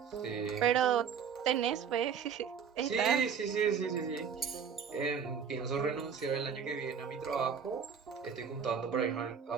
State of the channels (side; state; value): left; quieter; 7.1 dB